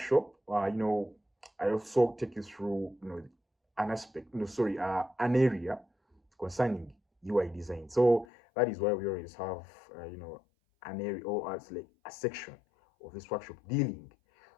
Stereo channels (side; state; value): right; drops out; at 8.2 s